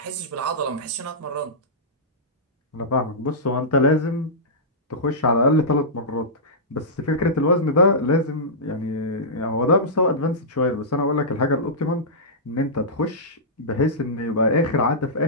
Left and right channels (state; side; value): normal; both; correlation -0.15